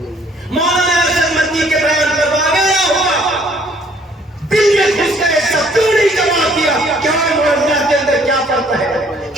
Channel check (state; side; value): normal; both; correlation 0.61